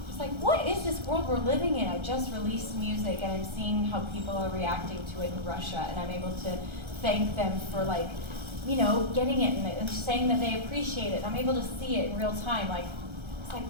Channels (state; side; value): late; left; 1.3 ms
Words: what is this world we're living in? I just released music and I'm seeing how people are reacting to it in Russia, and I'm able to thank them for getting it and saying that they appreciate it. I'm able to see it in real time. It's like,